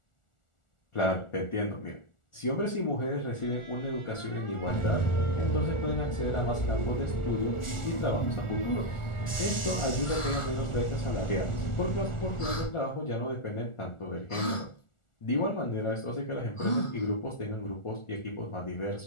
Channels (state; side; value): late; right; 1.4 ms